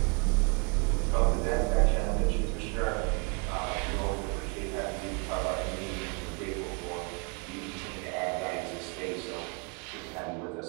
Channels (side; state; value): left; quieter; 32.8 dB